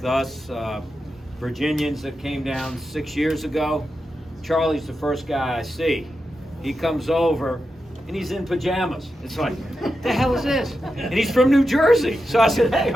us. Virginians that came down 6 years ago. Charlie's the first guy I see. He comes over and he's in pajamas. It's like, what the hell is this? And he's from New Jersey. So I said, hey,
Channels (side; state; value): both; normal; correlation 0.89